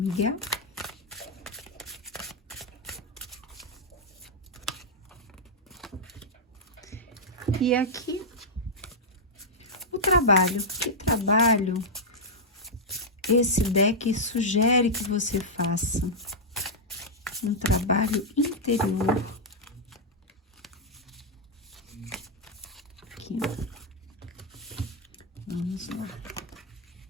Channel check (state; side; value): normal; both; correlation -0.05